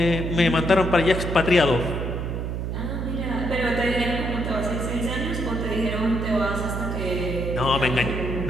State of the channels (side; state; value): right; noise; hum, 3 dB below the sound